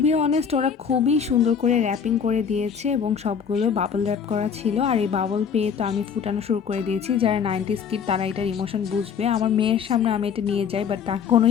অনেস্ট, ওরা খুবই সুন্দর করে র্যাপিং করে দিয়েছে এবং সবগুলো বাবল র্যাপ করা ছিল। আর এই বাবল পেয়ে তো আমি ফুটানো শুরু করে দিয়েছি। যারা 90s কিড তারা এটার ইমোশন বুঝবে। আমার মেয়ের সামনে আমি এটা নিয়ে যাই, বাট তার কোনো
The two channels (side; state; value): right; quieter; 7.0 dB